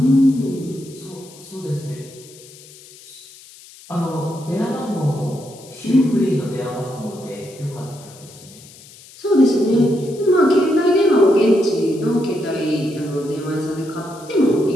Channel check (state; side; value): noise; left; hiss, 21 dB below the sound